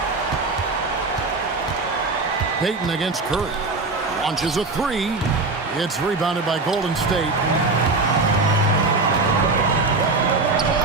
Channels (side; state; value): left; quieter; 3.6 dB